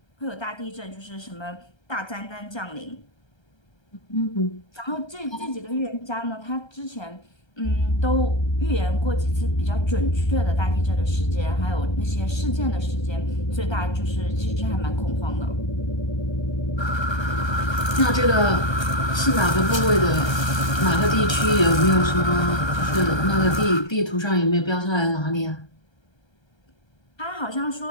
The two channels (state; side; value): late; right; 1.3 ms